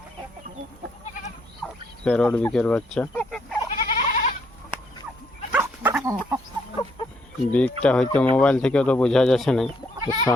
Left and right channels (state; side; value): normal; both; correlation 0.71